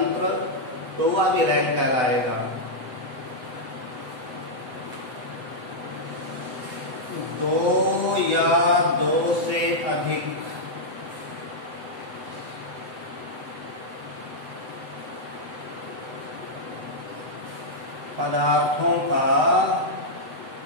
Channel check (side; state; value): left; late; 7.9 ms